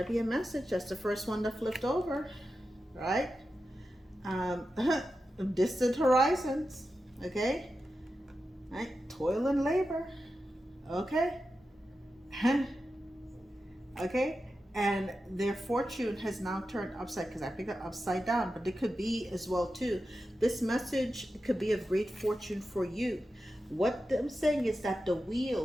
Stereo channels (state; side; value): normal; both; correlation 0.91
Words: be a message. That's the first one that flipped over, right? Distant horizons. Okay, right, toil and labor. Okay. Okay, and their fortune has now turned upside, because I picked it upside down, but it could be as well too. This message could be of great fortune for you. What I'm saying is that the